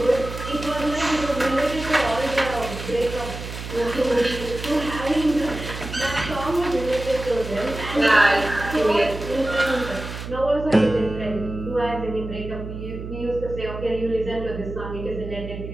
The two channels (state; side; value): noise; right; hum, 9 dB below the sound